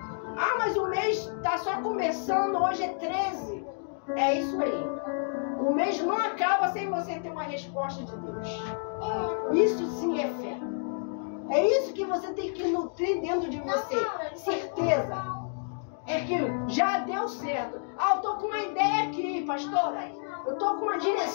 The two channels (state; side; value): silent; right; digital silence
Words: Ah, mas o mês está só começando, hoje é 13. É isso aí. O mês não acaba sem você ter uma resposta de Deus. Isso sim é fé. É isso que você tem que nutrir dentro de você. Certeza. É que já deu certo. Ah, eu tô com uma ideia aqui, pastora. Eu tô com uma